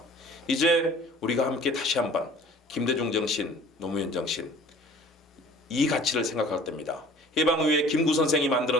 이제 우리가 함께 다시 한번 김대중 정신, 노무현 정신, 이 가치를 생각할 때입니다. 해방 이후에 김구 선생이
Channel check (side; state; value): both; normal; correlation 0.48